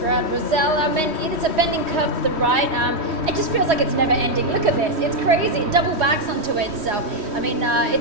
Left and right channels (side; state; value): left; late; 3.1 ms